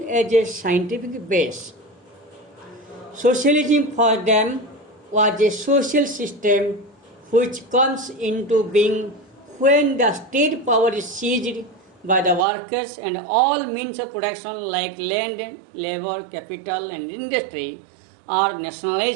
as a scientific base. Socialism for them was a social system which comes into being when the state power is seized by the workers and all means of production like land, labor, capital and industry are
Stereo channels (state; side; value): drops out; left; at 12.5 s